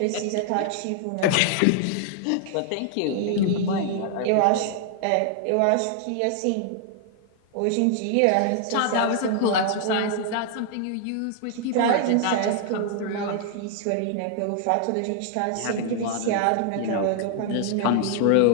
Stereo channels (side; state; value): both; different; correlation 0.00